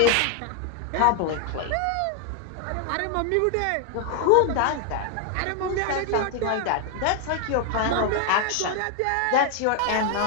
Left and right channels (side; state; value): both; different; correlation 0.00